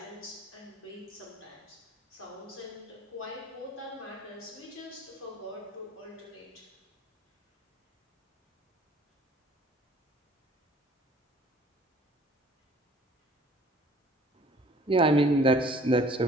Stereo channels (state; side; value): normal; both; correlation 0.53